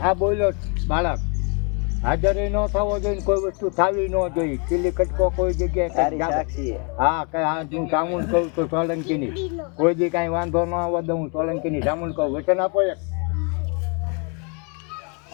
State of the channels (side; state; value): right; quieter; 34.6 dB